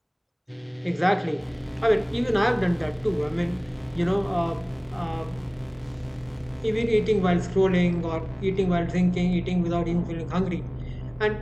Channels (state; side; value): identical; both; correlation 1.00